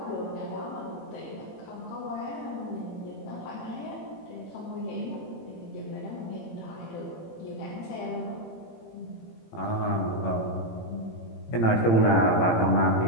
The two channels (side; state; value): right; late; 18 ms